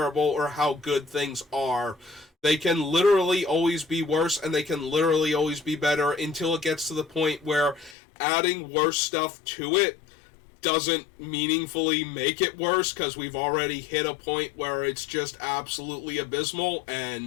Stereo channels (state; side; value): drops out; right; at 8.0 s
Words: or how good things are, they can literally always be worse, and they can literally always be better until it gets to the point where adding worse stuff to it doesn't meaningfully make it worse, because we've already hit a point where it's just absolutely abysmal,